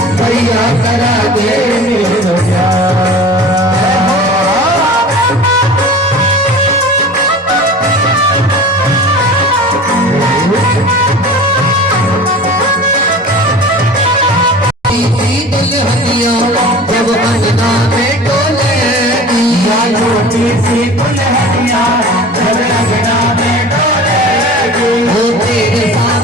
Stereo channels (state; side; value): normal; both; correlation 0.39